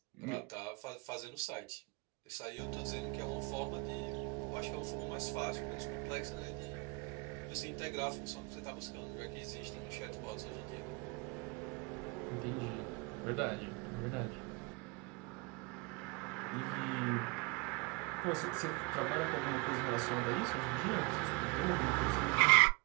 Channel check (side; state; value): left; quieter; 27.9 dB